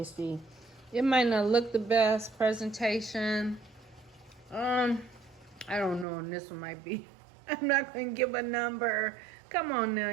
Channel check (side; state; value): left; drops out; at 6.1 s